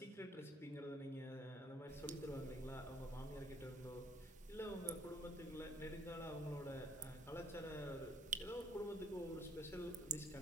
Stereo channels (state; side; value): normal; both; correlation 0.61